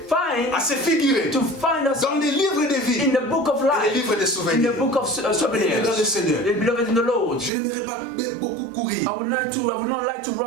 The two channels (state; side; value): drops out; left; at 7.5 s